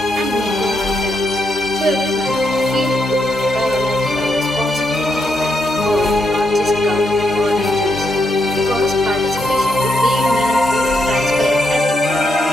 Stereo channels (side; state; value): both; normal; correlation 0.80